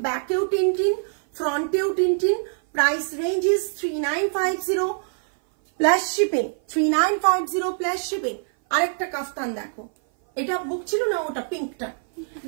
ব্যাকেও টিনটিন ফ্রন্টেও টিনটিন price range is 3950 plus shipping 3950 plus shipping আরেকটা কাফতান দেখো এটা বুক ছিল না ওটা পিঙ্কটা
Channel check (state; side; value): silent; left; 58 dB below the other